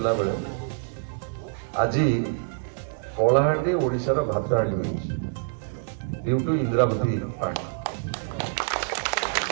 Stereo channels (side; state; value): left; silent; 61 dB below the other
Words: बेले आज कलाहांडी ओडिशार भातहांडी ड्यू टू इंद्रावती पानी